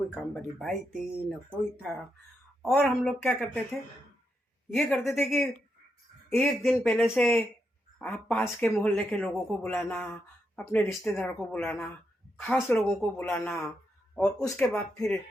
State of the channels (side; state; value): both; normal; correlation 0.83